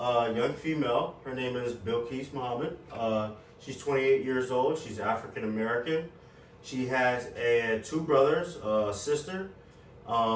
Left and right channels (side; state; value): both; identical; correlation 1.00